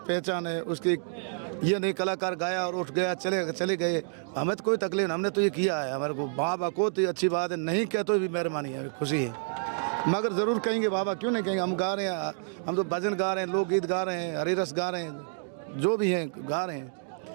है उसकी। ये नहीं कलाकार गाया और उठ गया चले गए, हमें तो कोई तकलीफ नहीं, हमने तो ये किया है, हमारे को बाबा को तो अच्छी बात है, नहीं कह तो भी मेहरबानी है, खुशी है, मगर ज़रूर कहेंगे बाबा, क्यों नहीं कहेंगे। हम गा रहे हैं, हम तो भजन गा रहे हैं, लोकगीत गा रहे हैं, हरिरस गा रहे हैं, जो भी हैं गा रहे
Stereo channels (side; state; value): left; silent; digital silence